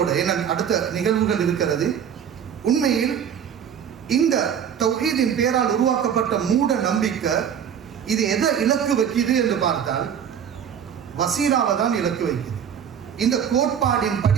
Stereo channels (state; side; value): quieter; left; 8.3 dB